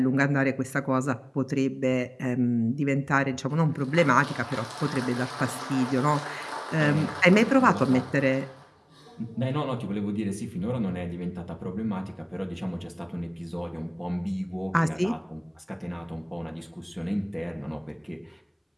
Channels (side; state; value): both; identical; correlation 1.00